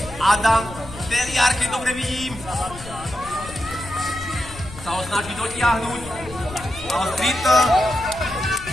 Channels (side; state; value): left; noise; rumble, 15 dB below the sound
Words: Adam Teliar, keď dobre vidím. Sa ho snaží dotiahnuť. Streeter,